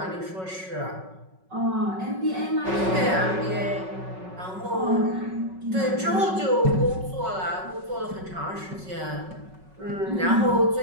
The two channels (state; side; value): late; left; 5.4 ms